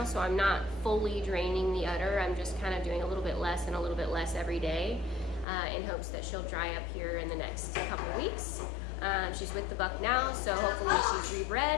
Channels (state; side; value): drops out; right; at 5.5 s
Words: so I'm not fully draining the udder. I'm just kind of doing a little bit less and a little bit less every day in hopes that she'll dry up here in the next couple weeks. She's with the buck now, so hopefully she's